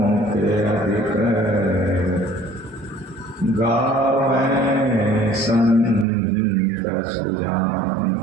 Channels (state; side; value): drops out; left; at 6.1 s